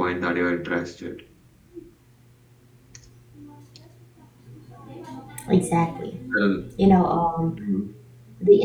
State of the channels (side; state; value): both; identical; correlation 1.00